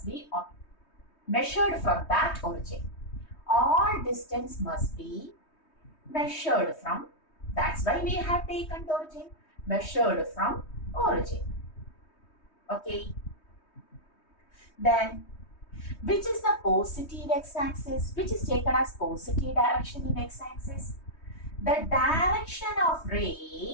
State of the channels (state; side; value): late; right; 3.2 ms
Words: be measured from that origin. All distance must be measured from, that's why we have taken the origin, measured from origin. Okay. Then, which is the positive x-axis, which is taken as positive direction in x-axis? The direction of